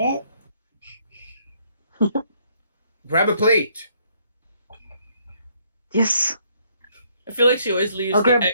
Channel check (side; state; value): both; inverted; correlation -0.68